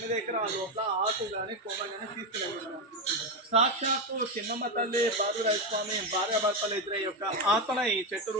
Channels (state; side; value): normal; both; correlation 0.10